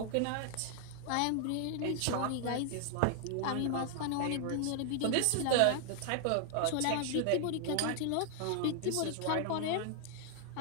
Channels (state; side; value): different; both; correlation 0.00